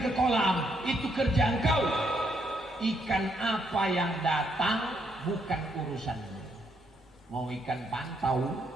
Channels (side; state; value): both; normal; correlation 0.75